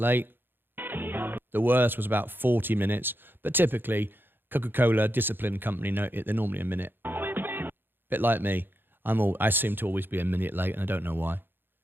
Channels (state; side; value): late; left; 0.099 ms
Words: The worst was about 40 minutes, but typically Coca-Cola, disciplined company, they're normally a minute. Bit like me. I seem to always be a minute late, and I don't know why.